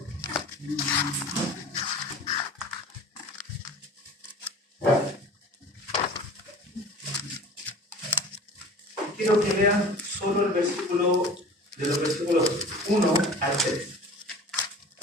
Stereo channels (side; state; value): both; normal; correlation 0.41